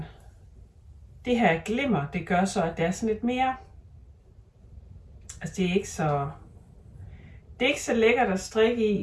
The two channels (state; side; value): identical; both; correlation 1.00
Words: Det her glimmer, det gør så, at det er sådan lidt mere. Altså det er ikke så lækkert at strikke